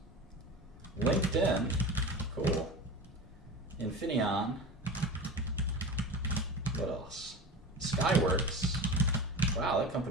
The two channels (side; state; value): both; normal; correlation 0.31